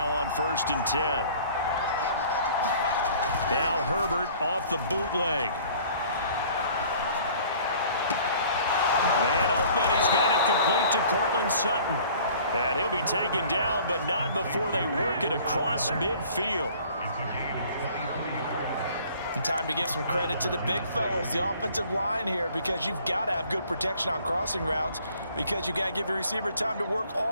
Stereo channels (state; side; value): inverted; both; correlation -0.52